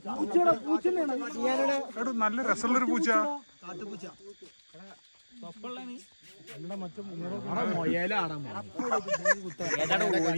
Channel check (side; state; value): both; inverted; correlation -1.00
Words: നല്ല രസമുള്ളൊരു പൂച്ച.